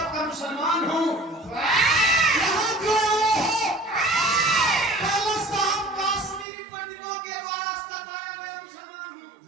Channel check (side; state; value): left; drops out; at 6.5 s